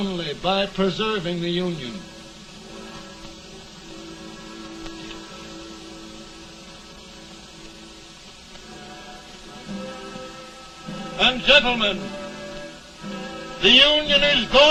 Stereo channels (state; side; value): identical; both; correlation 1.00